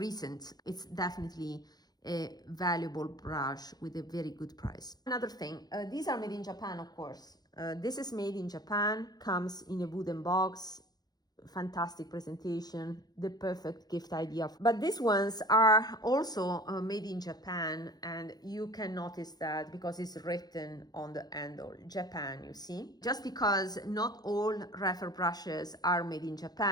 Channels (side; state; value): right; late; 0.19 ms